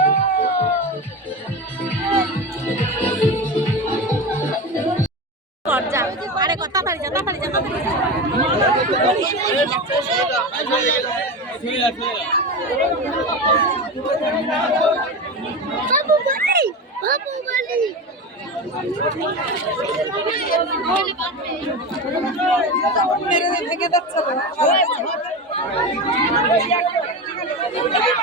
আরে কথা তাড়াতাড়ি যা তাড়াতাড়ি যা তাড়াতাড়ি বাবু বলি বাবু বলি মেরে ভেঙে যাচ্ছে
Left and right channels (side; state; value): both; normal; correlation 0.23